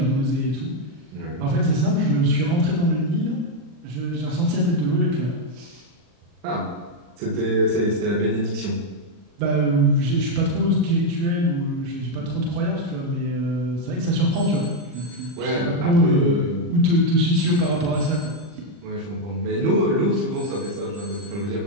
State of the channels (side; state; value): left; late; 40 ms